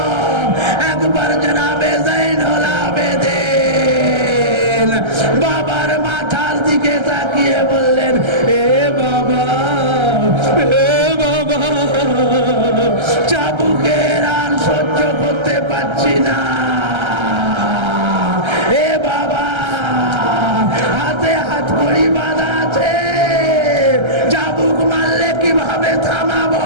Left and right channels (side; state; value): left; late; 1.3 ms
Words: একবার জনাবে জয়নুল আবেদিন বাবার মাথার দিকে তাকিয়ে বললেন, এ বাবা, এ বাবা, চাবুকের আর সহ্য করতে পারছি না, এ বাবা, হাতে হাত কড়ি বাঁধা আছে, চাবুক মারলে কিভাবে থামাবো?